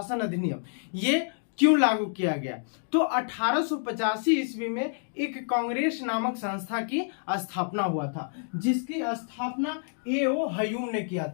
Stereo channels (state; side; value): silent; right; digital silence